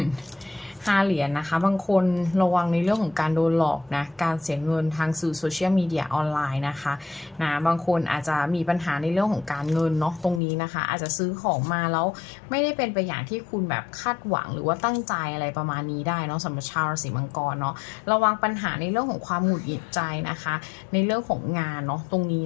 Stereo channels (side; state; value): right; drops out; at 10.4 s